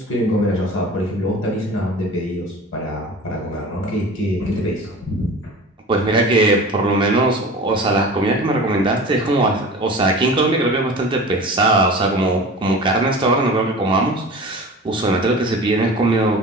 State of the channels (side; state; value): both; normal; correlation 0.37